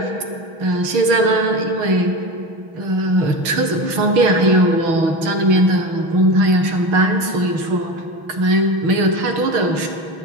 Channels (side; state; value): left; late; 6.2 ms